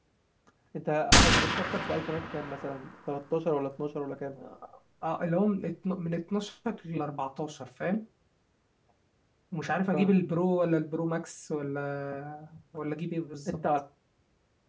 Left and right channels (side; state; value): both; identical; correlation 1.00